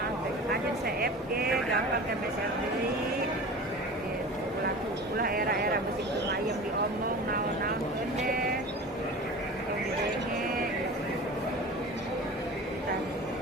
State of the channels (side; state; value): both; normal; correlation 0.36